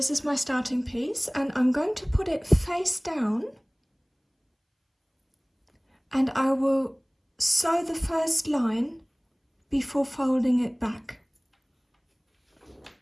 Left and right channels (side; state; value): both; identical; correlation 1.00